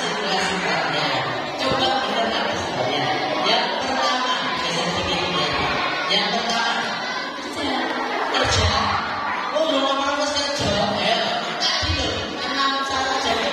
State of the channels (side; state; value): both; identical; correlation 1.00